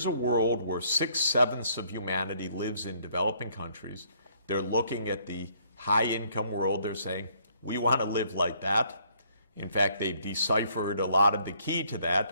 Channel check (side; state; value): both; inverted; correlation -0.65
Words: a world where 6/7 of humanity lives in developing countries. They're looking at the high-income world. They're saying, we want to live like that. In fact, they've deciphered a lot of the key to that,